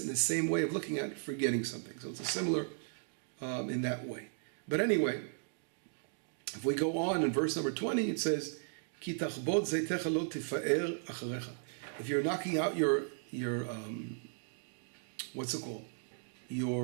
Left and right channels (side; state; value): left; silent; digital silence